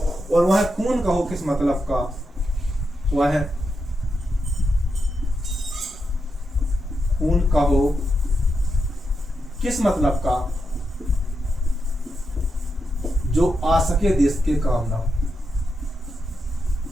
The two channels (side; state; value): both; normal; correlation 0.85